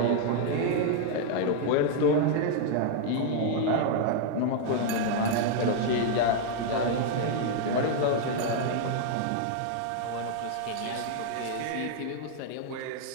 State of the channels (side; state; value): both; different; correlation 0.00